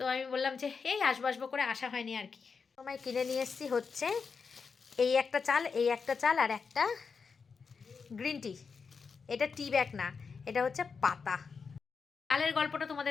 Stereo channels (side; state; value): right; quieter; 5.4 dB